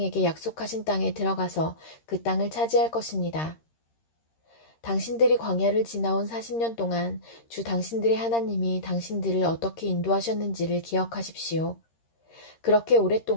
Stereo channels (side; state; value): right; late; 13 ms